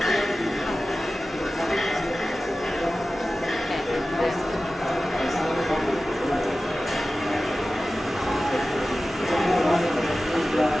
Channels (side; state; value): both; normal; correlation 0.95